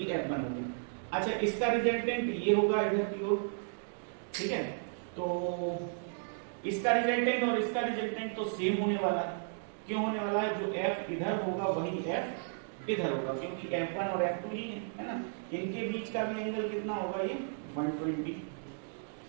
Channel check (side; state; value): left; silent; digital silence